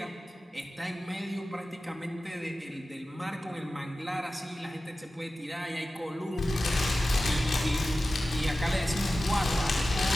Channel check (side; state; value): both; normal; correlation 0.95